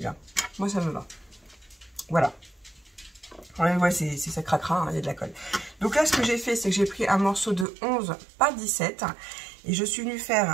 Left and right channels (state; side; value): drops out; left; at 7.7 s